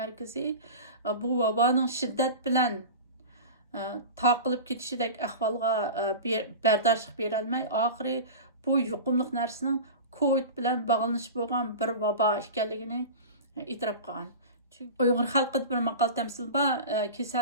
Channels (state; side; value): inverted; both; correlation -0.31